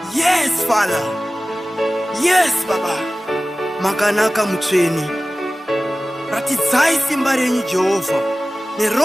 Yes, Father. Yes, Baba. Makanaka mutweni. Ratidzai simba renyu Jehovah.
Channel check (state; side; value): normal; both; correlation 0.97